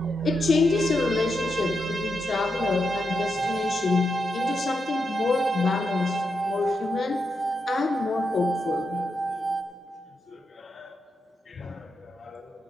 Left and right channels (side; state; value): both; normal; correlation 0.85